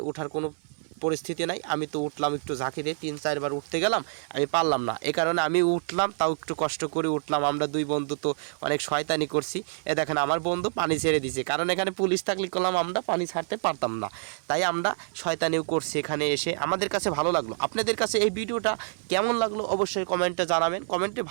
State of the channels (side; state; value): left; silent; 58 dB below the other